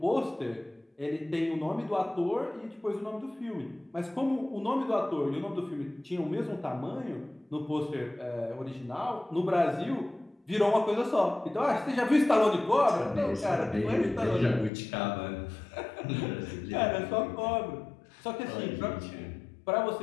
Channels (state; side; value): drops out; right; at 14.7 s